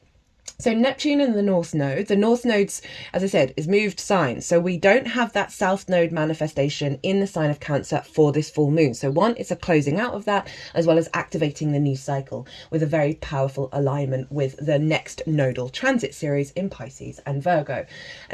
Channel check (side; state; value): both; identical; correlation 1.00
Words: So Neptune and the North Node's, as I said, is moved signs. So we don't have that South Node manifestation in the sign of Cancer for this full moon. So one, it's a closing out of that, as well as activating the new cycle with a very powerful alignment with the next nodal transit series in Pisces and Virgo.